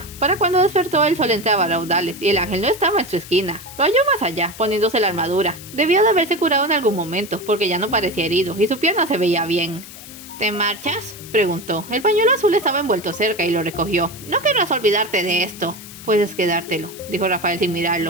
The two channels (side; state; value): left; noise; hiss, 15 dB below the sound